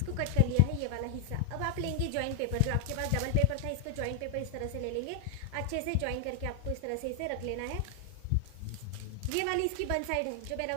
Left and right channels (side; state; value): both; different; correlation 0.00